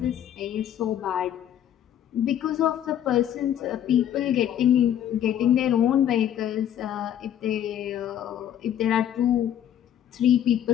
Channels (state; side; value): quieter; right; 10.5 dB